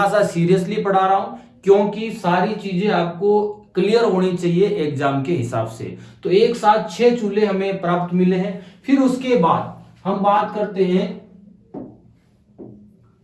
सा सीरियसली पढ़ा रहा हूं क्योंकि सारी चीजें आपको क्लियर होनी चाहिए एग्जाम के हिसाब से। तो एक साथ 6 चूल्हे हमें प्राप्त मिले हैं। फिर उसके बाद हम बात करते हैं,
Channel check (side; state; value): both; identical; correlation 1.00